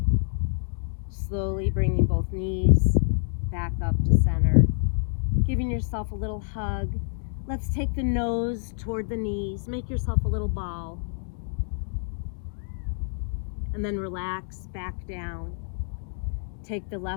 Slowly bringing both knees back up to center. Giving yourself a little hug. Let's take the nose toward the knees. Make yourself a little ball. And then relax back down. Take the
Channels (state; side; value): silent; right; digital silence